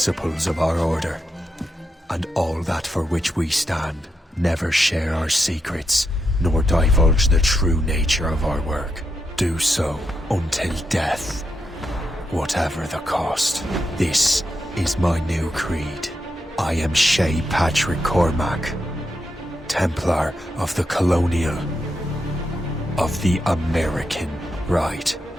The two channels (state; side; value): normal; both; correlation 0.85